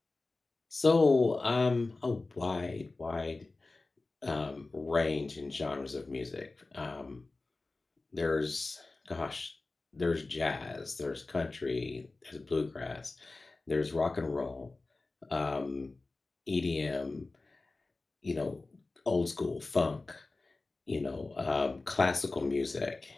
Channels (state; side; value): quieter; right; 3.4 dB